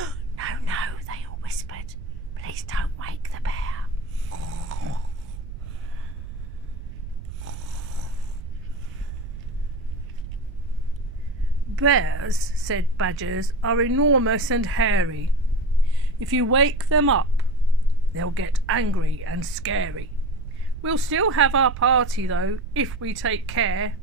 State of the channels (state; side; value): noise; right; rumble, 10 dB below the sound